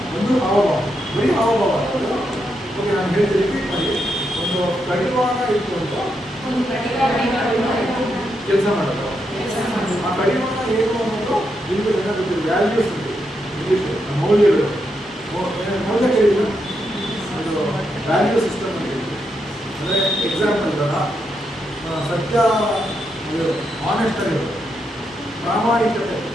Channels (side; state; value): both; normal; correlation 0.82